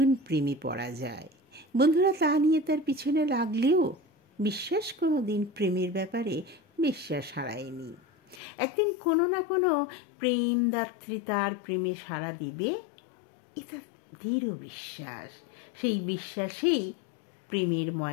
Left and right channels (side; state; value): right; drops out; at 8.4 s